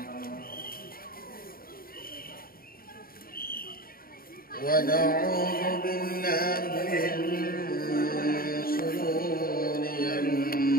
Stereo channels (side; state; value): right; late; 0.43 ms